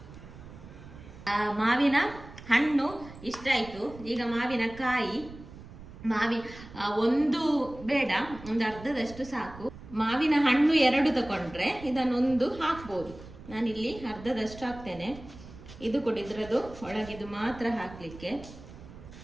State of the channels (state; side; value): noise; right; rumble, 16 dB below the sound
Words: ಮಾವಿನ ಹಣ್ಣು ಇಷ್ಟ ಆಯ್ತು. ಈಗ ಮಾವಿನ ಕಾಯಿ, ಒಂದು ಬೇಡ, ಒಂದು ಅರ್ಧದಷ್ಟು ಸಾಕು. ಮಾವಿನ ಹಣ್ಣು 2 ತಗೊಂಡ್ರೆ ಇದನ್ನೊಂದು ಹಾಕ್ಬೋದು. ನಾನಿಲ್ಲಿ ಅರ್ಧದಷ್ಟು ಹಾಕ್ತೇನೆ. ಇದು ಕೊಡಿದ್ರದು ಒಳಗಿದು ಮಾತ್ರ ಹಾಕ್ಲಿಕ್ಕೆ.